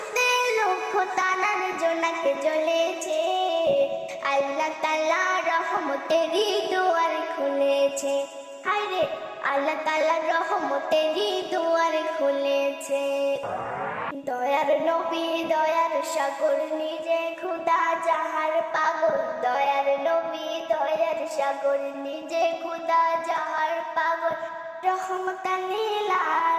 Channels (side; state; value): both; identical; correlation 1.00